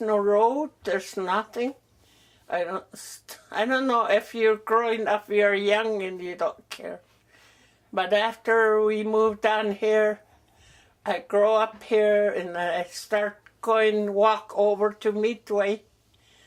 road, there's nothing. I don't know if you're growing up, you're young and you don't care. But after we moved down here, I grow up here and I start walk over to Midway,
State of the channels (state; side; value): identical; both; correlation 1.00